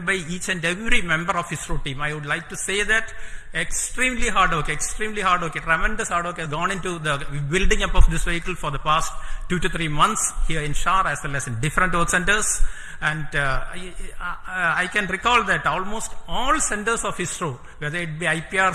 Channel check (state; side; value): identical; both; correlation 1.00